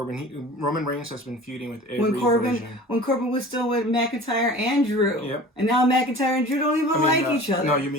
Roman Reigns has been feuding with every version. When Corbin was still with McIntyre and Drew. Yep. And now McIntyre and Drew don't even like each other. No, you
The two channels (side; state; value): both; normal; correlation 0.41